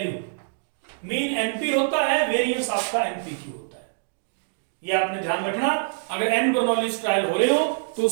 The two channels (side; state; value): left; silent; digital silence